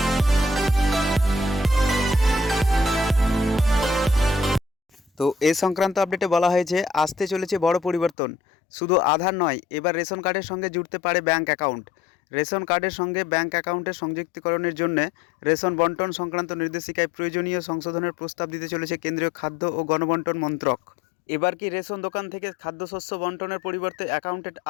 তো এ সংক্রান্ত আপডেটে বলা হয়েছে আসতে চলেছে বড় পরিবর্তন। শুধু আধার নয়, এবার রেশন কার্ডের সঙ্গে জুড়তে পারে ব্যাঙ্ক অ্যাকাউন্ট। রেশন কার্ডের সঙ্গে ব্যাঙ্ক অ্যাকাউন্টের সংযুক্তিকরণের জন্য রেশন বন্টন সংক্রান্ত নির্দেশিকায় প্রয়োজনীয় সংশোধনের প্রস্তাব দিতে চলেছে কেন্দ্রীয় খাদ্য ও গণবন্টন মন্ত্রক। এবার কি রেশন দোকান থেকে খাদ্যশস্য বন্টনের পরিবর্তে অ্যাকাউন্টে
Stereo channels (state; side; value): drops out; right; at 8.2 s